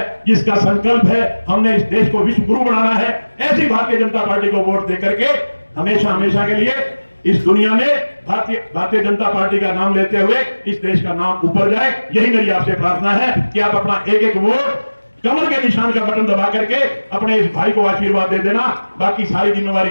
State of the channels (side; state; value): both; inverted; correlation -1.00